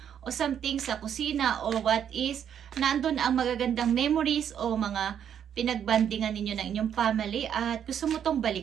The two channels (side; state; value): left; quieter; 8.9 dB